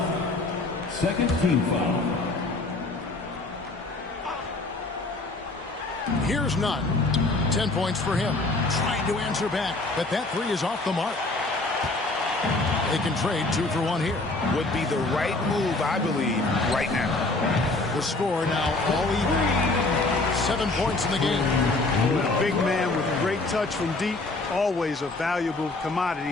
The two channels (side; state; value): right; quieter; 3.1 dB